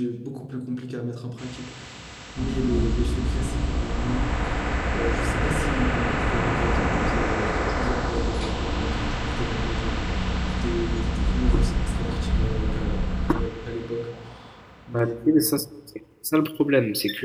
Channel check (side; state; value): both; identical; correlation 1.00